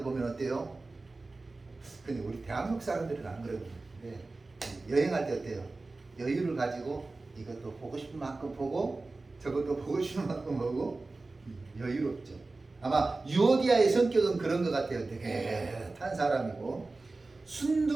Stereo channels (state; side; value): quieter; left; 3.4 dB